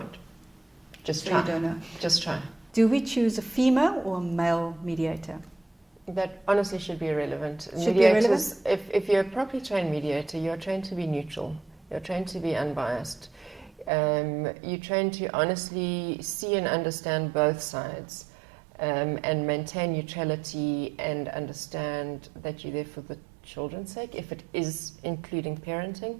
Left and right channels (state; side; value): drops out; left; at 13.9 s